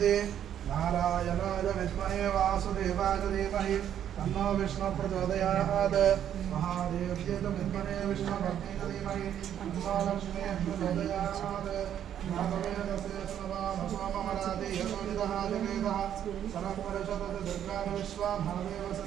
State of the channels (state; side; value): quieter; left; 10.0 dB